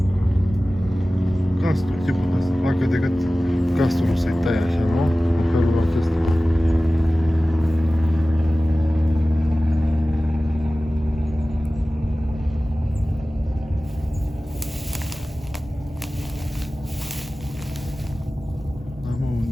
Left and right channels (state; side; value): normal; both; correlation 0.97